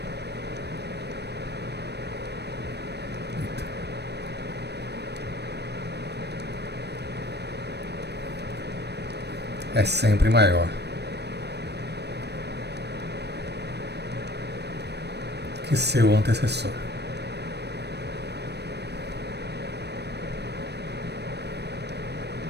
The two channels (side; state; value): left; late; 0.49 ms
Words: é sempre maior que seu antecessor.